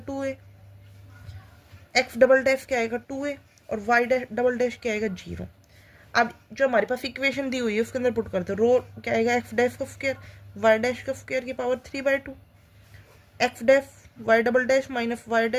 2a। x डबल डैश क्या आएगा? 2a और y डबल डैश क्या आएगा? 0। अब जो हमारे पास इक्वेशन दी हुई है उसके अंदर पुट करते हैं। रो क्या आएगा? x डैश का स्क्वायर y डैश का स्क्वायर की power 3/2 x dash y double dash minus y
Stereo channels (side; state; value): both; identical; correlation 1.00